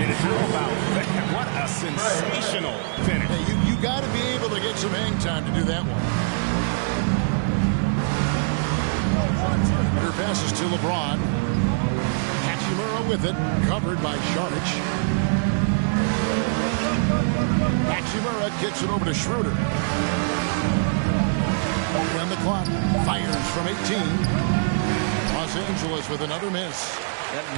How about that? What a sensational finish. Hey, you got to be able to get some hang time to do that one. Better passes to LeBron. Hachimura with it, covered by Saric. Hachimura gets it over to Schroeder. On the clock, fires from 18. Los Angeles with another miss. That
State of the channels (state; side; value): silent; left; 58 dB below the other